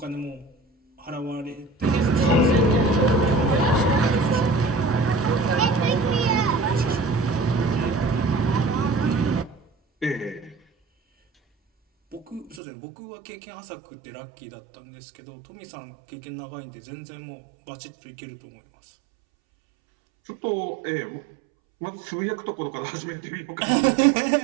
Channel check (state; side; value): drops out; left; at 12.6 s